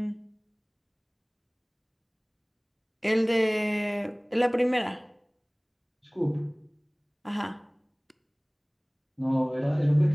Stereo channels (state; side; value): identical; both; correlation 1.00